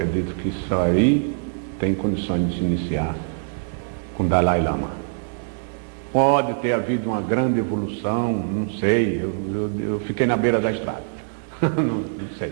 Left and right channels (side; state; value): left; silent; digital silence